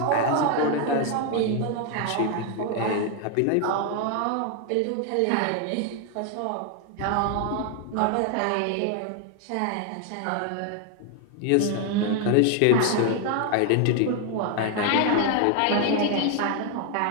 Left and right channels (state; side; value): different; both; correlation 0.00